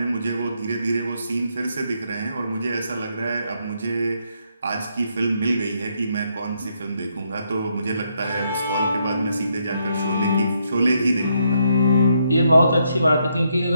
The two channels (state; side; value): inverted; both; correlation -0.76